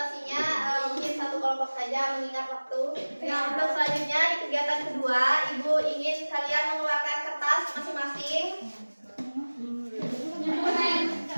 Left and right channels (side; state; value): both; inverted; correlation -1.00